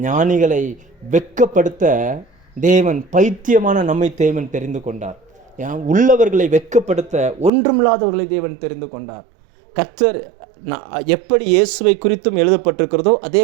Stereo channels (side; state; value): left; drops out; at 7.5 s